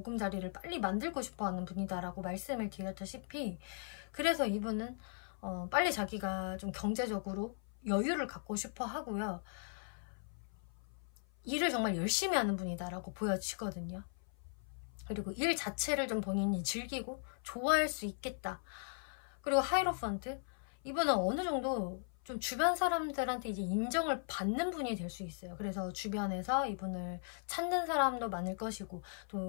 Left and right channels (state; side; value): silent; right; 52 dB below the other